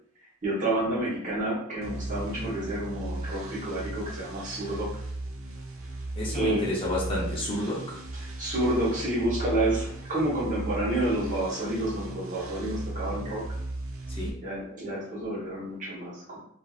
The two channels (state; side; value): normal; both; correlation 0.41